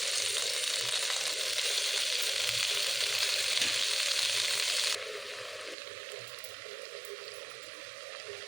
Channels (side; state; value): left; drops out; at 5.8 s